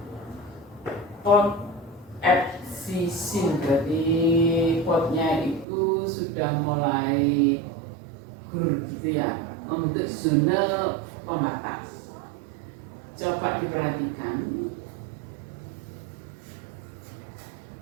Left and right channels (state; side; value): drops out; left; at 5.7 s